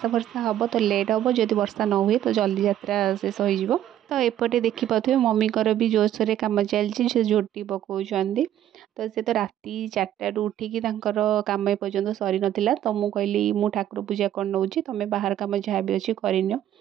फर्षा हम तो लेट हम, जदि वर्षा न हुए तो जल्दी यात्रा शेष हो। तो एपटे देखिपे मम्मी भी जोरसोर कम चलती से झोटी पकाउछंदी। तो से तो राति 4टारू उठिकी कम एपर्यंत सरी नाला। तो मुझे कहली मु ठाकुर पूजा कर नौची तुम बाहर कम जहाँ भी अच्छी करनियो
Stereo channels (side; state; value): left; quieter; 11.7 dB